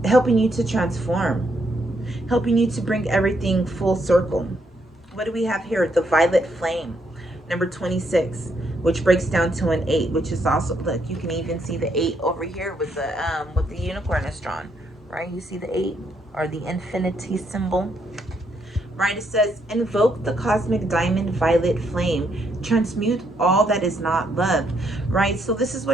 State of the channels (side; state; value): both; normal; correlation 0.75